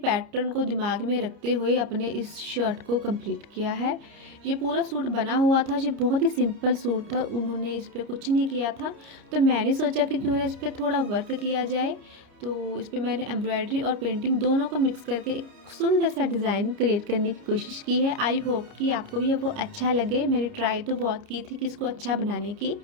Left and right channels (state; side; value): late; left; 30 ms